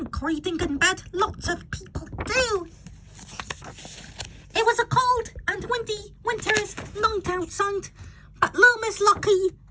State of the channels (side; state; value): both; identical; correlation 1.00